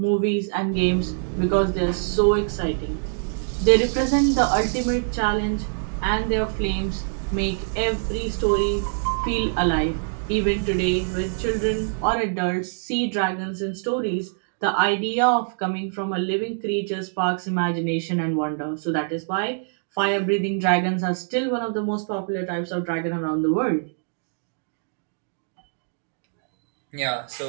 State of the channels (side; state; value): left; silent; digital silence